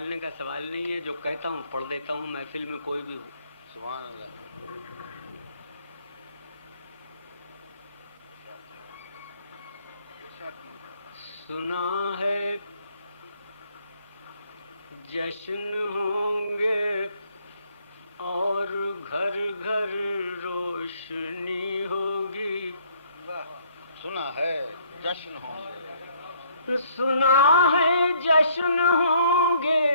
کا سوال نہیں ہے، جو کہتا ہوں پڑھ دیتا ہوں محفل میں کوئی بھی ہو. سبحان اللہ. سنا ہے جشن ہوں گے اور گھر گھر روشنی ہوگی. سنا ہے جشن ہوں گے. سنا ہے جشن ہوں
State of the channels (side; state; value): both; inverted; correlation -0.64